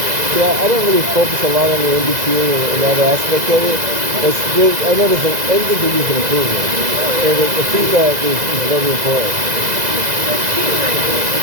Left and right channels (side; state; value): left; late; 2.0 ms